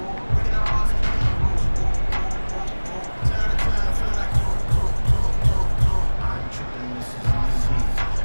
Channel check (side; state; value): both; inverted; correlation -1.00